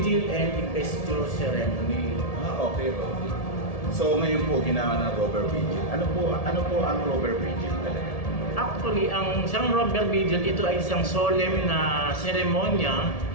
and Investiture Ceremony. Okay, Rover. So ngayon po ginawa ng Rover Vigil. Ano po ang Rover Vigil talaga? Actually, ang isang Rover Vigil, ito ay isang solemn na seremonya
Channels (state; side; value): late; right; 1.7 ms